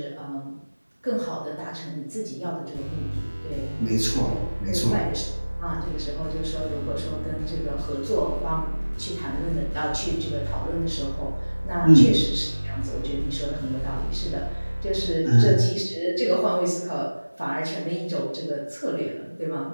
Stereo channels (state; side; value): inverted; both; correlation -1.00